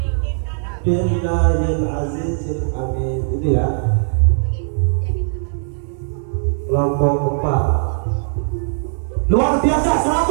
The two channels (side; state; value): left; silent; digital silence